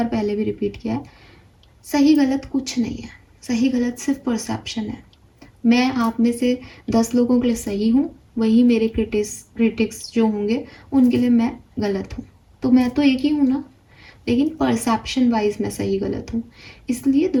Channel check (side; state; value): both; identical; correlation 1.00